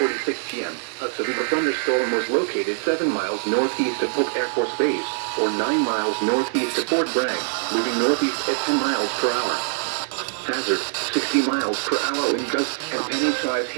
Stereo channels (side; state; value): left; silent; 61 dB below the other